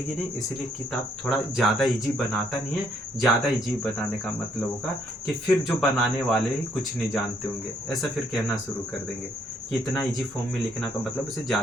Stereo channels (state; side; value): normal; both; correlation 0.69